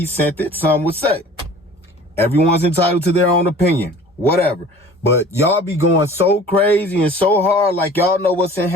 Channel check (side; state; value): both; normal; correlation 0.46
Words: sent it, some would say. Everyone's entitled to their own opinion, whatever. But y'all be going so crazy and so hard like y'all know what's in